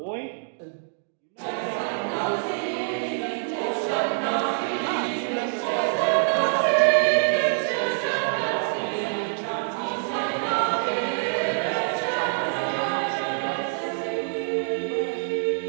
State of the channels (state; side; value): silent; left; digital silence